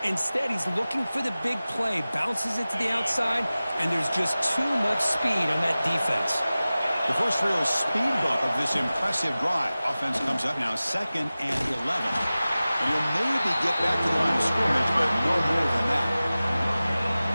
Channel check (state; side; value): inverted; both; correlation -0.97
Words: Instead, he's looking for the big play, bounces it to the outside, and there's just too much speed on that defense. The first real speed bump of this impressive drive. Offense comes up now 2nd and 11. And he'll maybe get back to the line of scrimmage, but no more than that.